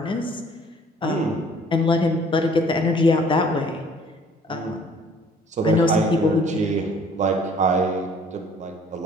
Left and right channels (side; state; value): both; normal; correlation 0.56